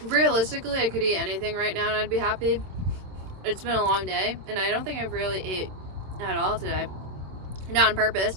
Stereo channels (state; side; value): late; left; 27 ms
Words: Realistically, I could eat anything right now and I'd be happy. It's been a long day, and I don't think I've really ate at all today. Not on purpose,